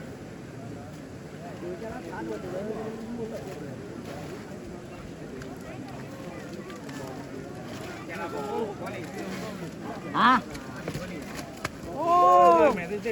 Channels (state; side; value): identical; both; correlation 1.00